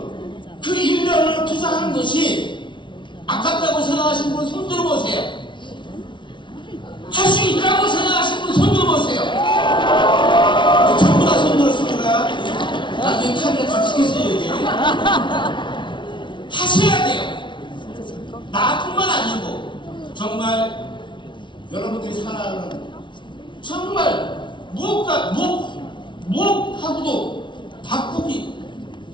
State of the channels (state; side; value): late; right; 0.24 ms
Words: 그 1년을 투자하는 것이 아깝다고 생각하시는 분 손 들어보세요. 할 수 있다고 생각하시는 분 손 들어보세요. 전부 다 손 들었습니다. 나중에 카메라 다치겠어요 여기. 하셔야 돼요. 나뿐만 아니고 정말 여러분들이 살아가는 정말 무엇하고도 바꾸기